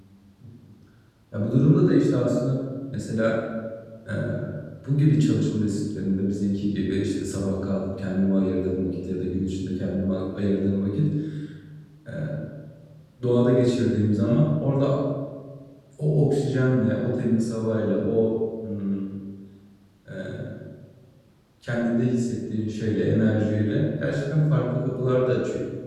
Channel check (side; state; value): both; identical; correlation 1.00